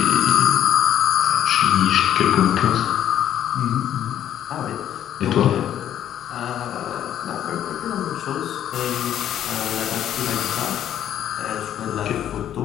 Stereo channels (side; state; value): right; quieter; 10.8 dB